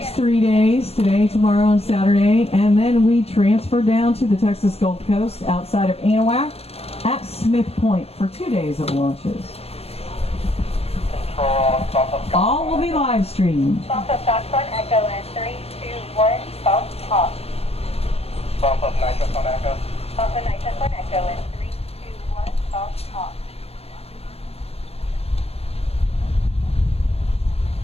3 days, today, tomorrow, and Saturday, and then we transfer down to the Texas Gulf Coast outside of Anahuac at Smith Point for 2 days of launches. All will be live streamed. Bump up Foxtrot Echo in 3, 2, 1, false hop. Bump up nitrous on Echo. Bump up nitrous on Echo in 3, 2, 1, false hop.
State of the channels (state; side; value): late; right; 0.29 ms